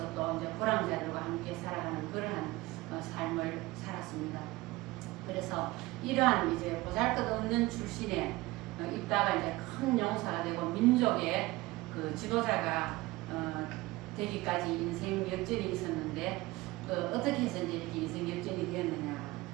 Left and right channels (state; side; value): quieter; left; 20.0 dB